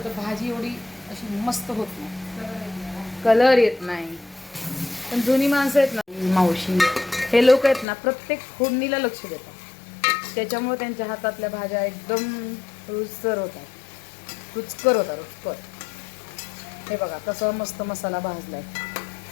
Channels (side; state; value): right; drops out; at 7.9 s